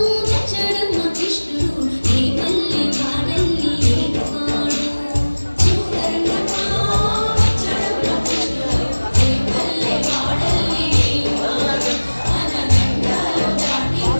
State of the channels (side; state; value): both; inverted; correlation -1.00